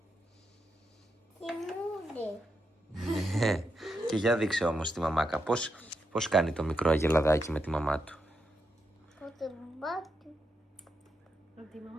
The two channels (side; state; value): both; normal; correlation 0.84